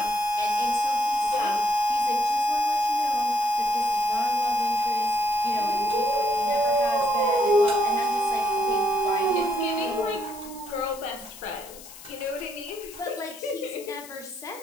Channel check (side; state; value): left; noise; hiss, 17 dB below the sound